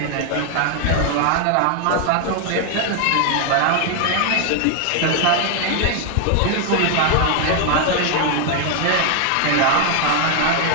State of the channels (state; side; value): different; both; correlation 0.00